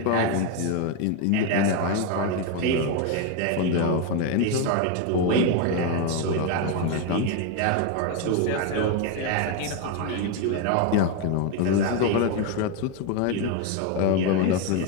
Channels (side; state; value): both; different; correlation 0.02